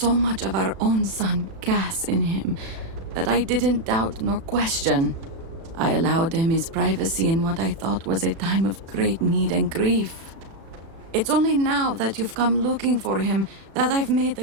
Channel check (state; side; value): late; left; 36 ms